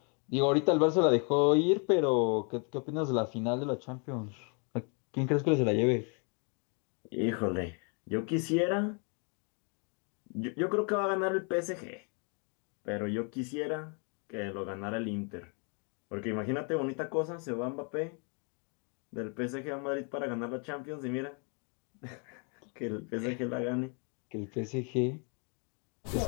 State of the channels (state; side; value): quieter; right; 37.3 dB